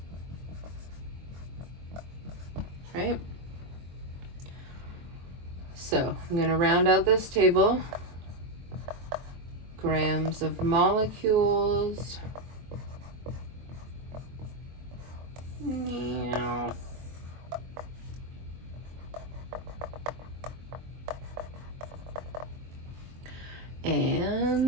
Right? So I'm going to round out this table. Grams of molecules. Meow.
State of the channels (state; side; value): late; left; 23 ms